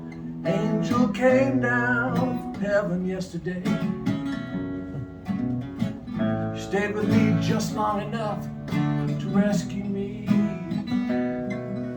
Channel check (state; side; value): identical; both; correlation 1.00